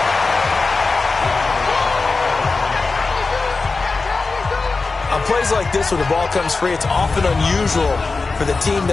On plays like this, when the ball comes free, it's often unusual for the team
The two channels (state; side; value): quieter; right; 4.0 dB